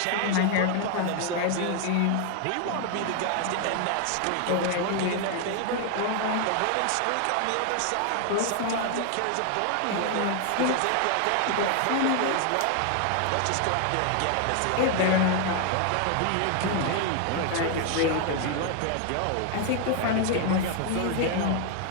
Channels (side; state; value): both; different; correlation 0.00